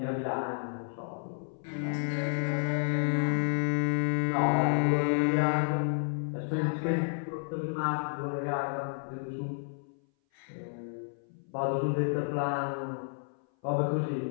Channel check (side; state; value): right; silent; 57 dB below the other